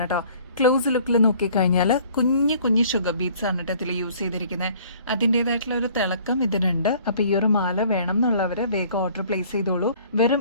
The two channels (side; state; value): both; inverted; correlation -0.55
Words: കേട്ടോ. ക്ലോസ് ലുക്കിൽ നോക്കിക്കഴിഞ്ഞാൽ കുഞ്ഞു കുഞ്ഞു ഷുഗർ ബീഡ്സ് ആണ് ഇതിൽ യൂസ് ചെയ്തിരിക്കുന്നത്. അതിൻ്റെതായിട്ടുള്ള ഒരു തിളക്കം ഇതിനുണ്ട്. അപ്പൊ ഈ ഒരു മാല വേണം എന്നുള്ളവര് വേഗം ഓർഡർ പ്ലേസ് ചെയ്തോളൂ. വെറും